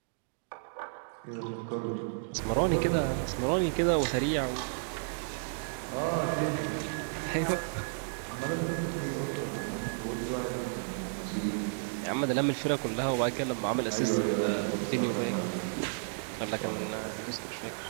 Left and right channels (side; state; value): left; silent; digital silence